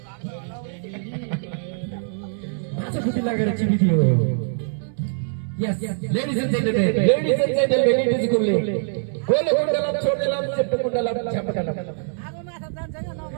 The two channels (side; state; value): left; silent; 63 dB below the other